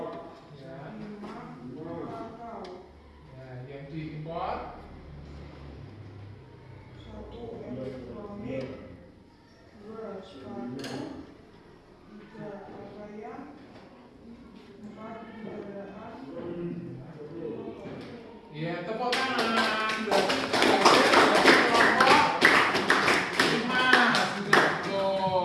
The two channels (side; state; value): both; identical; correlation 1.00